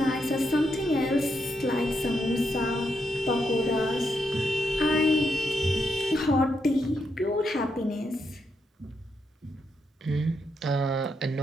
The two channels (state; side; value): normal; both; correlation 0.81